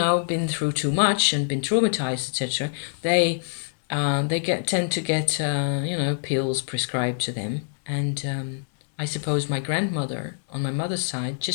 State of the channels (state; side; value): silent; right; digital silence